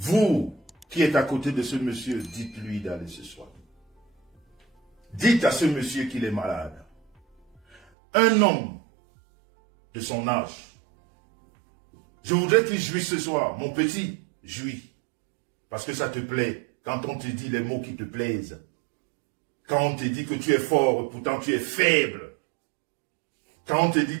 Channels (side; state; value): left; drops out; at 7.8 s